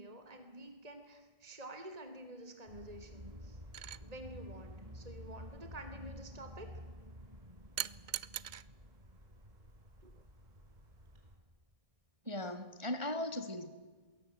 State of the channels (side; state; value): left; late; 1.6 ms